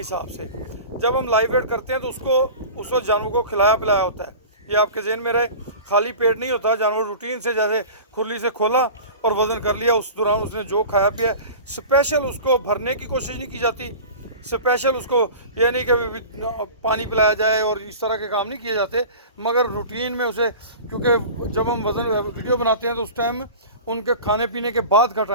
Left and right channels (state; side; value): inverted; both; correlation -0.36